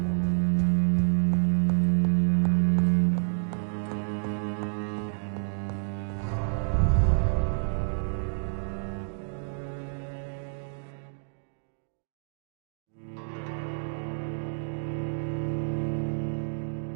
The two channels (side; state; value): left; silent; digital silence